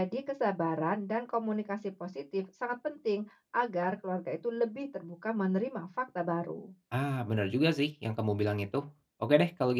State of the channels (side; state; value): both; identical; correlation 1.00